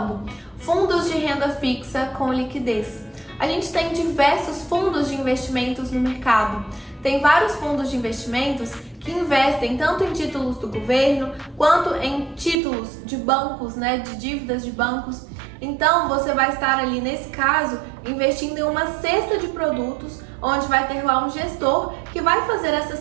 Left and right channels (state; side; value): drops out; left; at 12.6 s